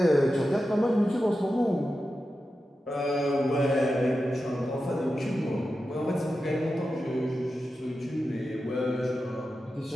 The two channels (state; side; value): normal; both; correlation 0.91